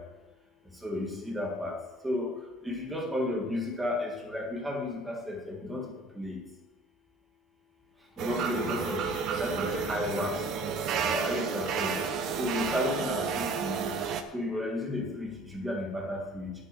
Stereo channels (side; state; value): both; normal; correlation 0.52